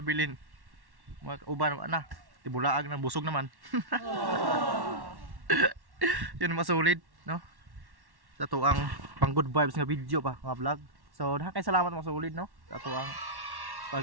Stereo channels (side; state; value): left; late; 1.1 ms